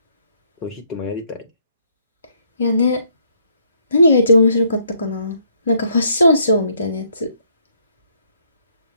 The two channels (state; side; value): inverted; both; correlation -0.69